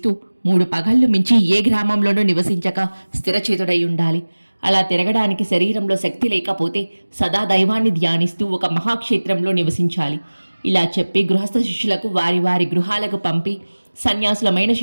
3 పగళ్ళు మించి ఏ గ్రామంలోనూ నివసించక స్థిరచేతుడై ఉండాలి. అలా తిరగడానికి శరీరంలో శక్తి లేకపోతే సదా దైవాన్ని ధ్యానిస్తూ ఒక మహాక్షేత్రంలో నివసించాలి. ఇలా చెప్పి గృహస్థ శిష్యులకు వారి వారి గృహాలకు పంపి సన్యాసులమైన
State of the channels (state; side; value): inverted; both; correlation -1.00